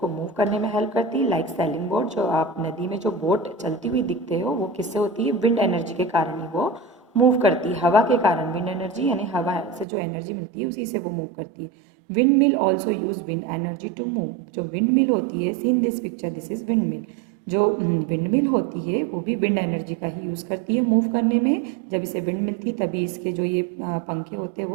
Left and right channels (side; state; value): left; drops out; at 9.9 s